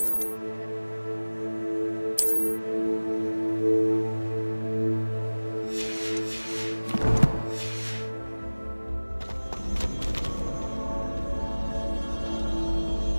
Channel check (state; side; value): inverted; both; correlation -1.00